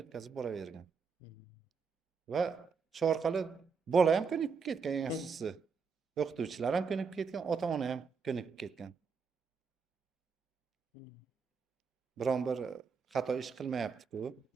o'tkazib boravergan. Va shu orqali bola ham ko'nikib ketgan, eng asosiysi. O'qituvchilar ham ko'nikib ketgan, ota-ona ham ko'nikib ketgan. Biron bir xato ish qilmayapti-ku,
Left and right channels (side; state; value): left; quieter; 5.5 dB